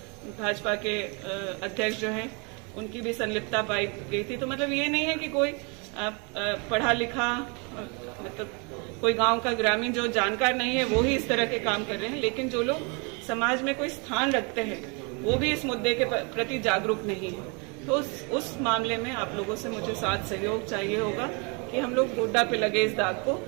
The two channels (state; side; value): quieter; left; 32.6 dB